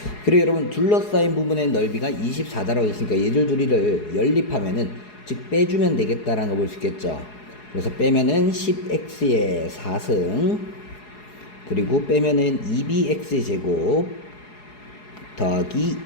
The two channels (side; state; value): right; late; 4.8 ms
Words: 그리고 여러분 둘러싸인 부분의 넓이가 24다라고 했으니까 얘들 둘이를 연립하면은 즉 빼주면 되겠다라는 거 볼 수 있겠죠. 그래서 빼면은 10x의 4승 그리고 빼면은 2bx 제곱 더하기